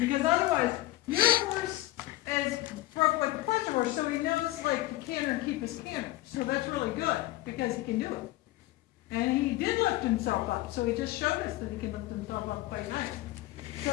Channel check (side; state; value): right; quieter; 16.6 dB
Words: otherwise, your horse is broke like a pleasure horse, so he knows like to canter and keep his canter. So that's really good because he can do it. And he did lift himself up, so he just showed us that he can lift himself up quite nice.